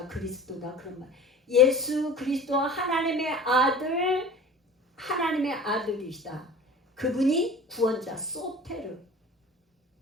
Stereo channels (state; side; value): normal; both; correlation 0.40